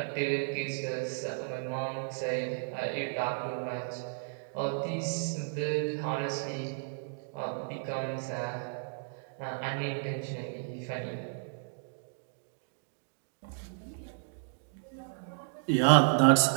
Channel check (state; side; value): silent; left; digital silence